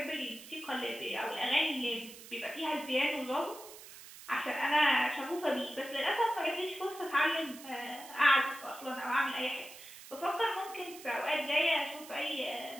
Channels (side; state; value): right; noise; hiss, 16 dB below the sound